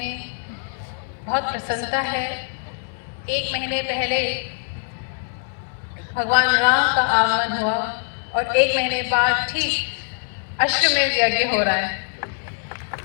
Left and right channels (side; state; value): right; silent; 63 dB below the other